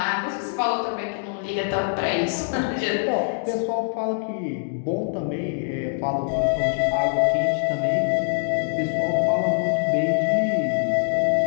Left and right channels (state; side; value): silent; right; digital silence